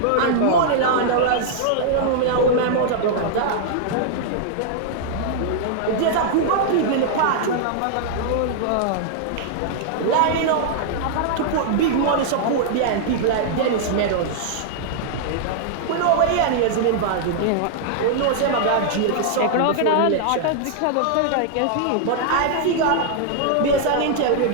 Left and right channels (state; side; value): different; both; correlation -0.01